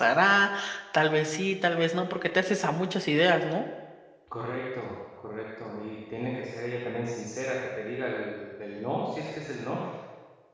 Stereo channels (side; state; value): both; identical; correlation 1.00